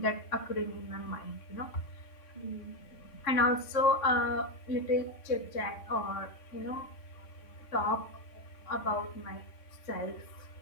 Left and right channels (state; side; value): late; right; 3.5 ms